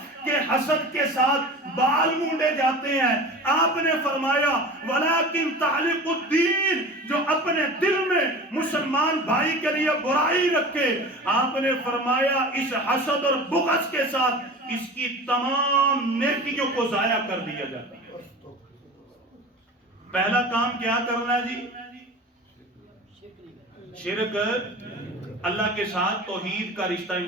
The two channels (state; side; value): normal; both; correlation 0.36